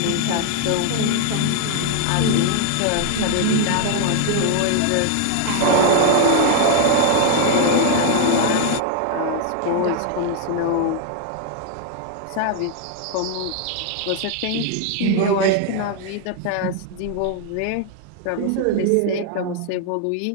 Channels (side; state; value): both; different; correlation 0.00